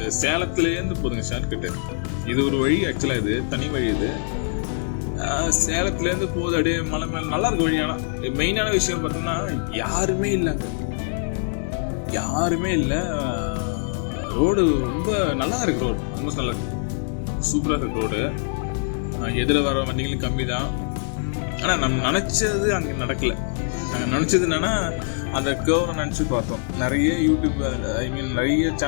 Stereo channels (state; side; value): silent; right; 61 dB below the other